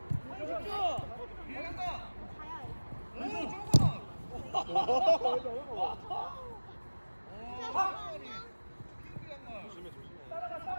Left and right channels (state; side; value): inverted; both; correlation -1.00